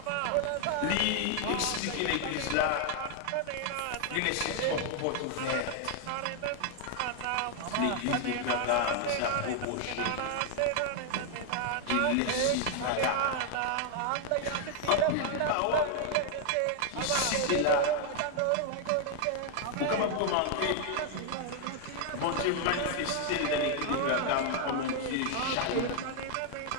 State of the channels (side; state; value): both; different; correlation 0.00